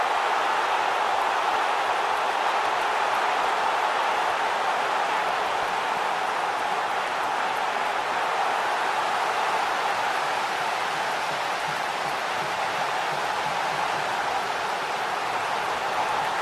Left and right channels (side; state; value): both; identical; correlation 1.00